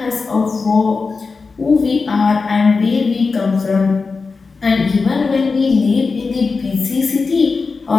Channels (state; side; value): quieter; right; 4.4 dB